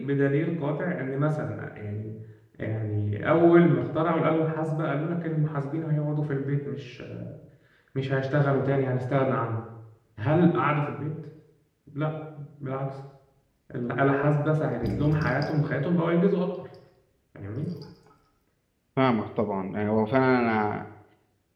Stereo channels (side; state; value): both; identical; correlation 1.00